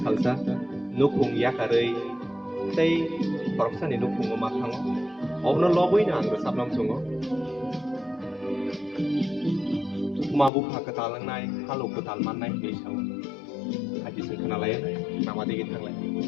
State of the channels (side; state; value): right; drops out; at 10.5 s